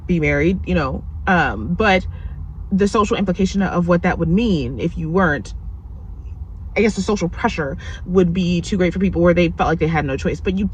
be married, but the social implication of what that would mean if you weren't, I guess the social pressure would be too great for people, where they felt like they had no choice, but you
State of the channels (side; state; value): both; identical; correlation 1.00